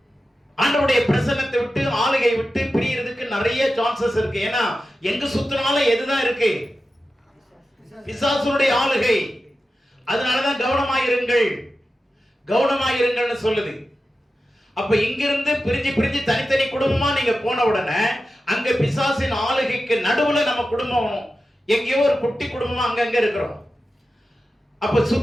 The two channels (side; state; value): both; normal; correlation 0.92